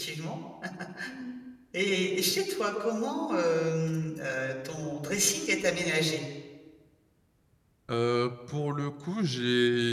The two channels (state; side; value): identical; both; correlation 1.00